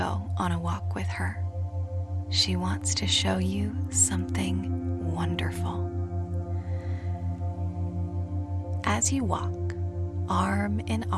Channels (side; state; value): both; identical; correlation 1.00